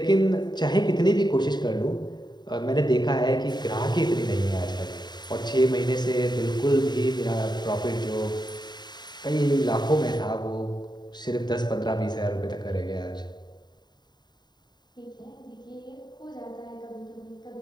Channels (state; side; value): late; right; 0.21 ms